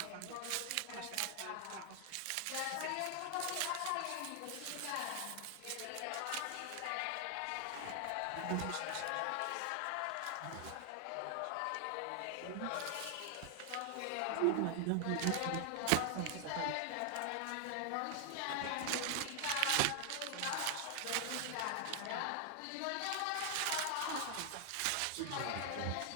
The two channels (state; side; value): different; both; correlation 0.00